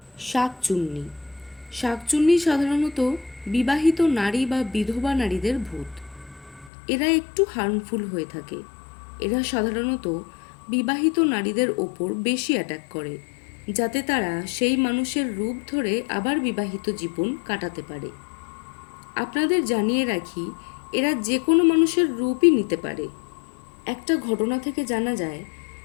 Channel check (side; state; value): right; drops out; at 6.7 s